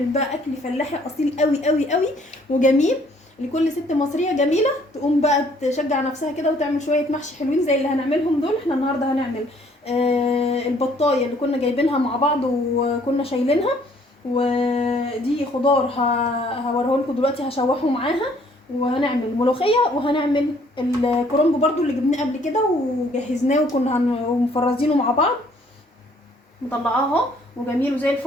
بقى اكل فلاحي اصيل قوي قوي قوي وجميل لكل ست مصريه جميله تقوم بقى تشجع نفسها كده وتعمل شويه محشي حلوين زي اللي هنعملهم دول. احنا النهارده هنعمل البطايه اللي كنا جايبينها مع بعض وكنا شايلينها، ودي خضار هوريه لكم دلوقتي هشوحه معاها، وهنعمل ملوخيه، وهنعمل الكرنب برضو اللي جبناه قبل كده وجهزناه وكنا مفرزينه مع بعض. مطلعاه اهو وجميل وزي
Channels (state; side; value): normal; both; correlation 0.62